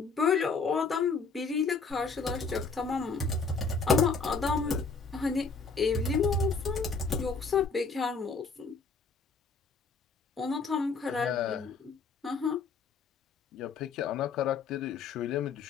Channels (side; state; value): right; quieter; 4.6 dB